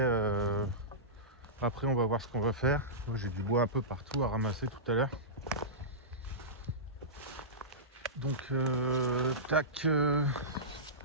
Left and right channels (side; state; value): both; normal; correlation -0.17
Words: on va voir ce qu'on va faire. J'ai du bois un peu partout à ramasser tout à l'heure. Donc